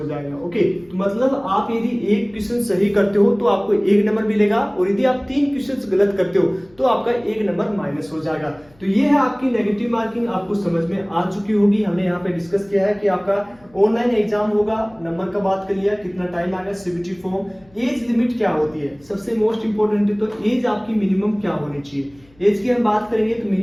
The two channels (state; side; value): noise; left; hum, 29 dB below the sound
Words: जाएगा। ओके, तो मतलब आप यदि एक क्वेश्चन सही करते हो तो आपको 1 नंबर मिलेगा और यदि आप 3 क्वेश्चन गलत करते हो तो आपका 1 नंबर माइनस हो जाएगा। तो ये है आपकी नेगेटिव मार्किंग, आपको समझ में आ चुकी होगी। हमने यहाँ पे डिस्कस किया है कि आपका ऑनलाइन एग्जाम होगा, नंबर का बात कर लिया, कितना टाइम आएगा, सीबीटी फॉर्म, एज लिमिट क्या होती है, सबसे मोस्ट इंपोर्टेंट है तो एज आपकी मिनिमम क्या होनी चाहिए। एज की हम बात करेंगे तो